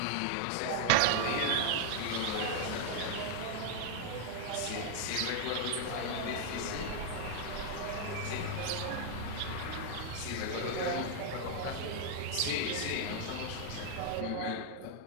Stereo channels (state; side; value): different; both; correlation 0.00